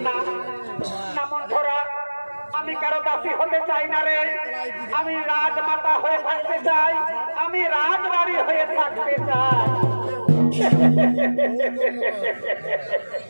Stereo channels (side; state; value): both; inverted; correlation -1.00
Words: না মন্থরা, আমি কারো দাসী হতে চাই না রে। আমি রাজমাতা হয়ে থাকতে চাই, আমি রাজরানী হয়ে থাকতে চাই।